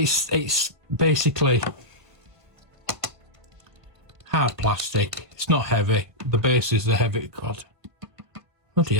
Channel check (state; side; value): late; left; 1.5 ms